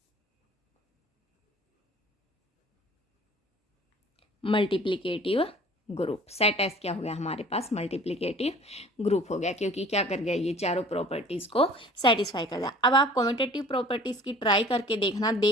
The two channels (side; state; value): both; normal; correlation 0.48